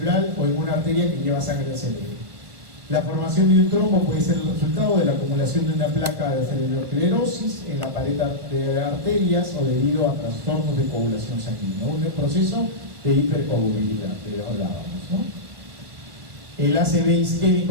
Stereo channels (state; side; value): late; left; 1.7 ms